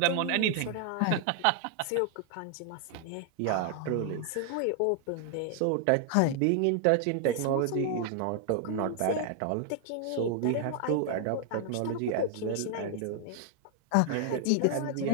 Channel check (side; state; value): both; different; correlation 0.00